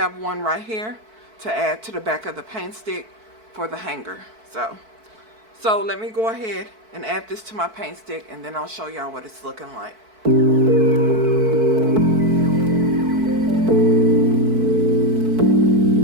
one right here to add to the back of the paint stick for the hanger. So let me go ahead and add this to my paint stick, and then I'll show y'all what it's looking like.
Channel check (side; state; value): left; late; 4.6 ms